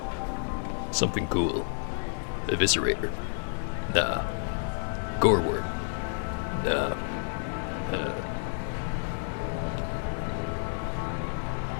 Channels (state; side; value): silent; right; digital silence